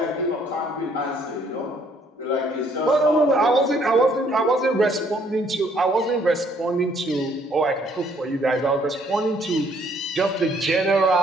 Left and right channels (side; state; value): both; normal; correlation 0.64